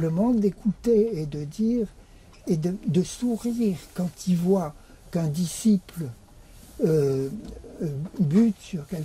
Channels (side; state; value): both; identical; correlation 1.00